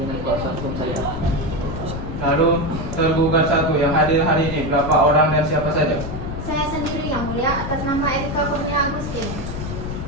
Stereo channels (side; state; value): left; noise; rumble, 6 dB below the sound